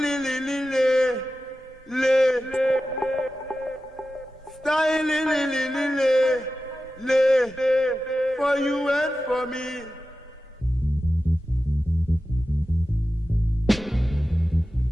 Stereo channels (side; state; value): both; normal; correlation 0.93